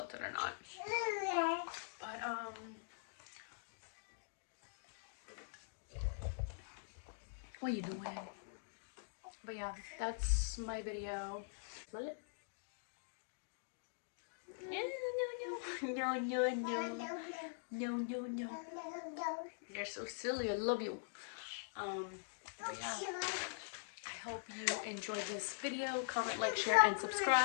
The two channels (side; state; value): right; silent; digital silence